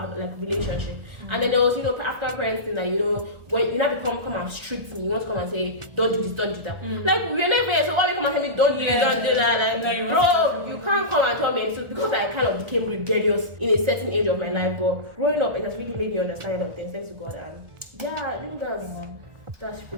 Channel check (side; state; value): left; late; 1.7 ms